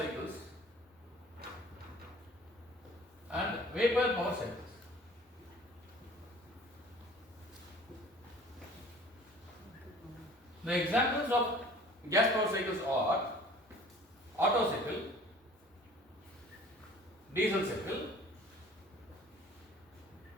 and vapor power cycles. The examples of gas power cycles are Otto cycle, diesel cycle,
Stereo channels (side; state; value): both; normal; correlation 0.49